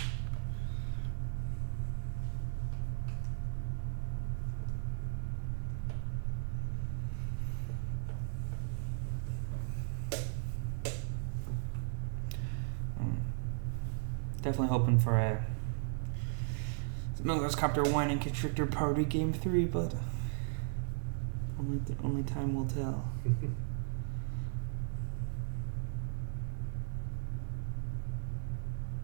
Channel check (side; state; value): left; silent; digital silence